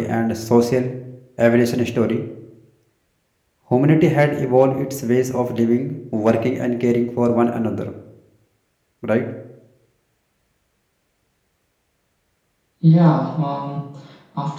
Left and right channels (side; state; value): both; identical; correlation 1.00